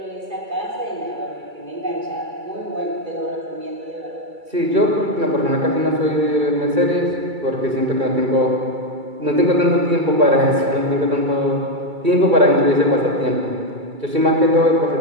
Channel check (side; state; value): left; late; 2.3 ms